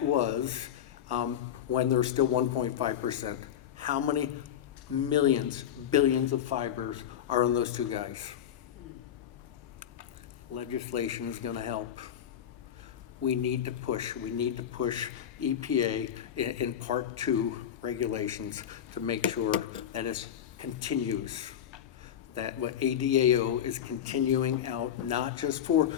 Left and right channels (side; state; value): right; quieter; 9.8 dB